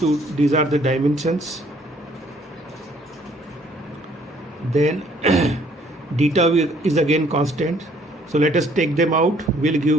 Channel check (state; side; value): normal; both; correlation 0.62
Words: dimensions. Then d is again constant. So let us take them out. Will